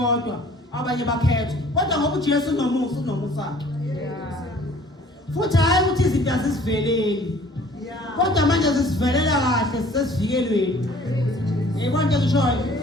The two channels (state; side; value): normal; both; correlation 0.53